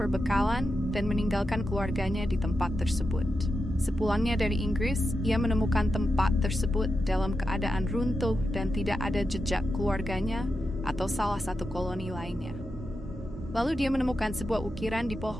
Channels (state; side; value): normal; both; correlation 0.88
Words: dan meninggalkan keluarganya di tempat tersebut. Sepulangnya dari Inggris, ia menemukan tempat tersebut dalam keadaan runtuh dan tidak ada jejak keluarganya atau salah satu koloni lainnya. Lalu dia menemukan sebuah ukiran di